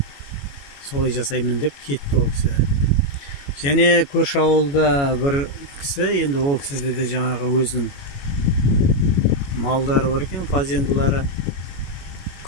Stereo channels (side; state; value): right; late; 21 ms